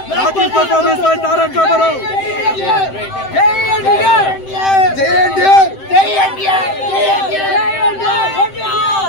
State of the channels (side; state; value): right; late; 7.7 ms